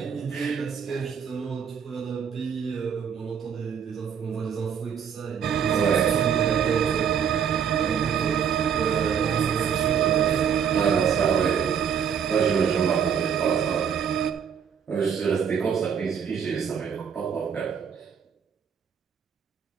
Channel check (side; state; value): left; quieter; 7.6 dB